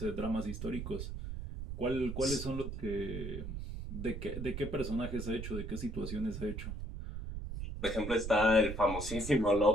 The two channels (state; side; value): noise; right; rumble, 6 dB below the sound